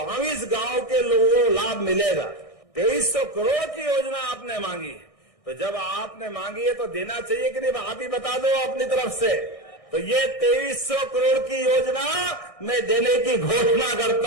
गांव के लोगों को लाभ मिलेगा। 2300 करोड़ की योजना आपने मांगी है, तो जब आपने मांगी है तो देना चाहिए कि नहीं? आप ही बता दो अपनी तरफ से। तो ये 2300 करोड़ की योजना मैं देने की घोषणा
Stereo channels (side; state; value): right; late; 1.6 ms